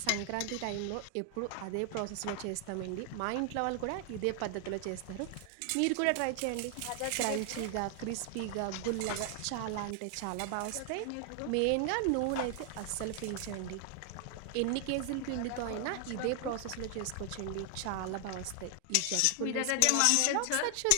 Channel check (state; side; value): different; both; correlation 0.00